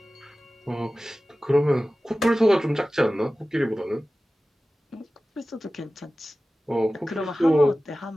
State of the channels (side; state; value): both; normal; correlation 0.96